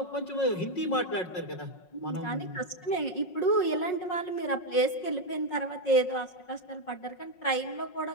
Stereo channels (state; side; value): late; right; 5.5 ms